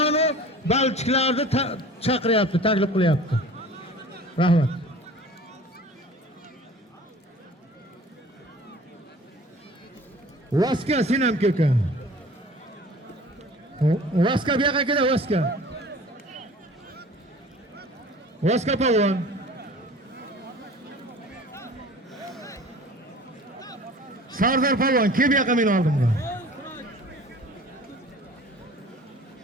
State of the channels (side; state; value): both; normal; correlation 0.44